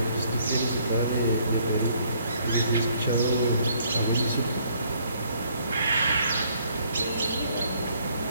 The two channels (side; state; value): both; inverted; correlation -0.65